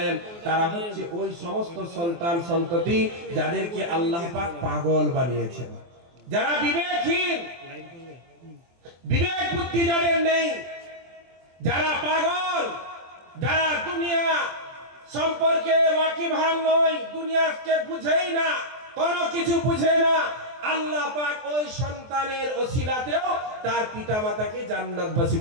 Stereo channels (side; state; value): left; late; 23 ms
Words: তারা হচ্ছে ওই সমস্ত সন্তান সন্ততি যাদেরকে আল্লাহ পাক পাগল বানিয়েছেন, যারা বিবেকহীন, বিবেক বুদ্ধি যাদের নেই, যারা পাগল, যারা দুনিয়া সম্পর্কে ওয়াকিবহাল নয়, দুনিয়াকে বুঝেই না, কোনো কিছু বুঝে না, আল্লাহ পাক ওই সন্তানের ওসিলাতেও তার পিতামাতাকে জান্নাতবাসী